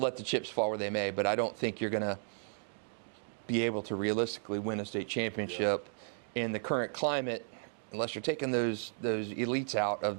the chips fall where they may. But I don't think you're going to be able to realistically win a state championship in the current climate unless you're taking those elites out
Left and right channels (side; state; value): left; silent; digital silence